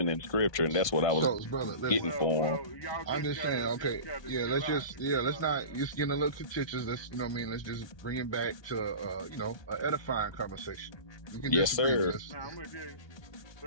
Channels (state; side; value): late; right; 1.2 ms